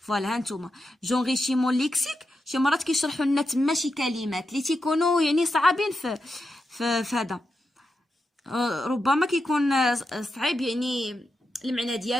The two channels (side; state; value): both; normal; correlation 0.87